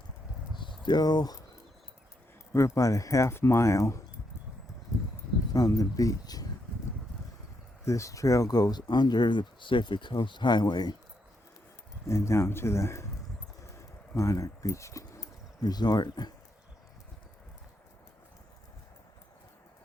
about a half mile from the beach. This trail goes under the Pacific Coast Highway and down to the Monarch Beach Resort.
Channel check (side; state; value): both; normal; correlation 0.80